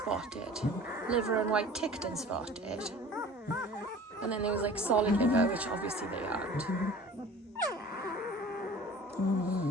liver and white ticked and spotted, and then there was like solid liver, which obviously they aren't.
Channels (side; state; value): both; normal; correlation 0.43